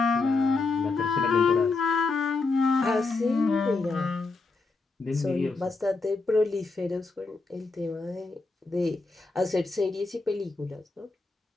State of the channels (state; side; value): quieter; right; 3.8 dB